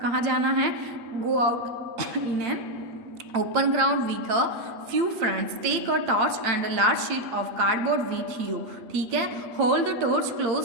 कहाँ जाना है, गो out in N open ground with a few friends. Take a torch and a large sheet of cardboard with you. ठीक है, hold the torch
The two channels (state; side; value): late; left; 8.8 ms